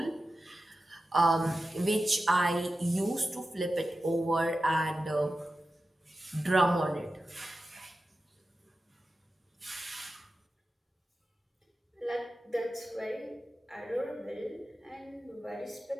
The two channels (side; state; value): both; normal; correlation 0.93